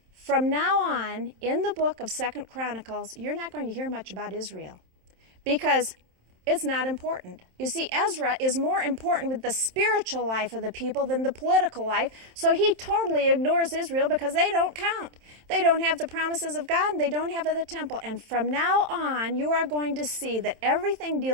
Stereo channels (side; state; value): left; late; 27 ms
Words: From now on, in the book of 2 Chronicles, you're not going to hear much about Israel because it's not important. You see, Ezra is more important with the spiritual life of the people than the political life, so he totally ignores Israel because they don't count. They don't have the promises of God, and they don't have the temple. And from now on, you are going to see that everything